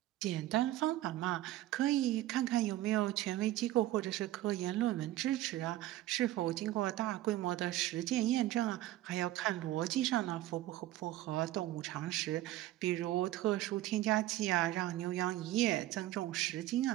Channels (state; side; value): quieter; left; 15.2 dB